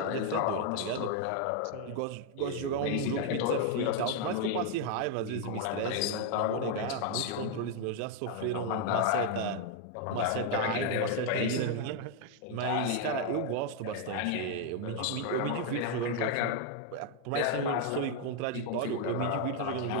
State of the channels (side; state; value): both; different; correlation 0.00